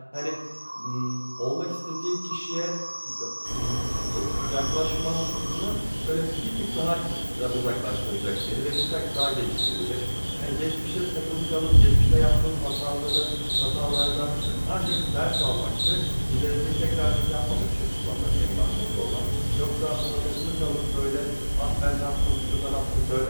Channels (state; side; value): inverted; both; correlation -1.00